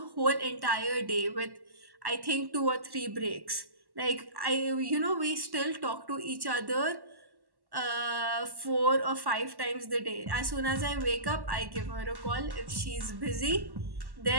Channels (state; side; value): late; left; 1.1 ms